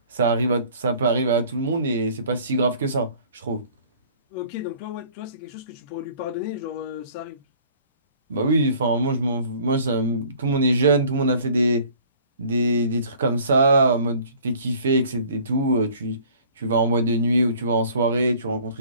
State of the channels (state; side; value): inverted; both; correlation -0.52